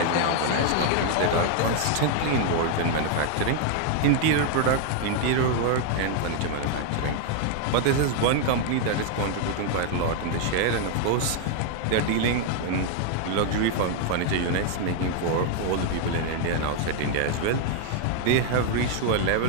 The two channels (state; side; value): different; both; correlation 0.00